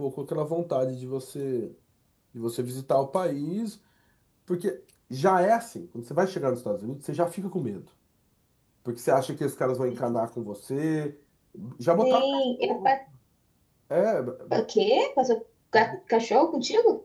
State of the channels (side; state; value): both; identical; correlation 1.00